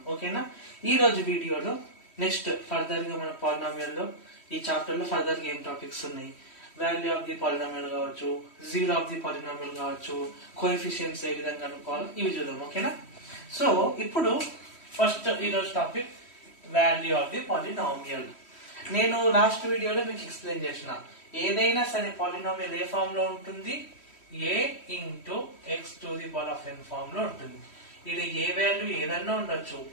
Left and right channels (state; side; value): late; right; 3.1 ms